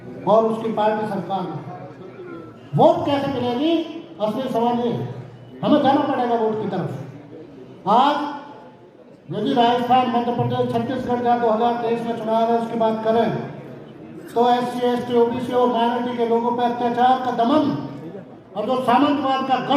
और उसकी पार्टी सरकार में। वोट कैसे मिलेगी? असली सवाल ये है, हमें जाना पड़ेगा वोट की तरफ। आज यदि राजस्थान, मध्य प्रदेश, छत्तीसगढ़ का 2023 में चुनाव है, उसकी बात करें तो SC, ST, OBC और माइनॉरिटी के लोगों पर अत्याचार का दमन और जो सामंतवाद का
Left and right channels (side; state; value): both; identical; correlation 1.00